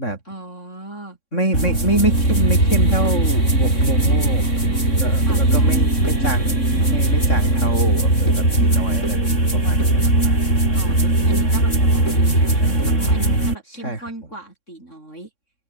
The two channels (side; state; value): right; late; 3.6 ms